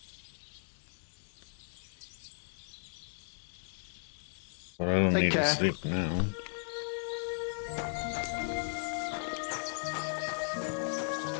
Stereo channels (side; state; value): right; silent; digital silence